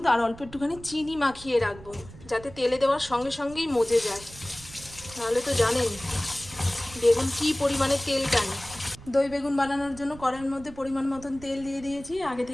আর অল্প একটুখানি চিনি মাখিয়ে রাখবো, যাতে তেলে দেওয়ার সঙ্গে সঙ্গেই মজে যায়। তাহলে তো জানেন বেগুন কী পরিমাণে তেল টানে। দই বেগুন বানানোর জন্য কড়াইয়ের মধ্যে পরিমাণ মতন তেল দিয়ে দিয়েছি। আগে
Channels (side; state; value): right; noise; rumble, 18 dB below the sound